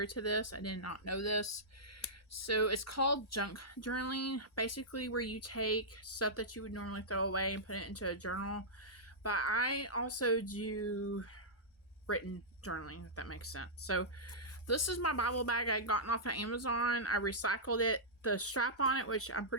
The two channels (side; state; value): both; normal; correlation -0.12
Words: to this. I did not know this. So it's called junk journaling, basically where you take stuff that you would normally throw away and put it into a journal. But I also do written journaling, if that makes sense. So this is my Bible bag I gotten off of Amazon. I recycled it. The strap on it, which I'm